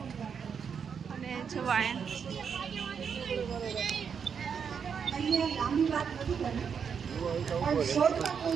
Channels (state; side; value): quieter; left; 6.8 dB